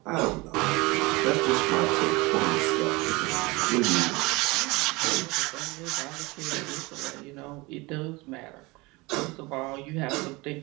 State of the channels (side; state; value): left; quieter; 24.0 dB